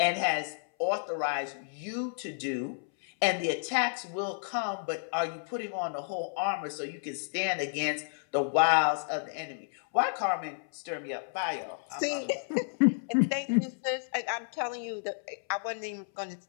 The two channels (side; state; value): right; silent; 57 dB below the other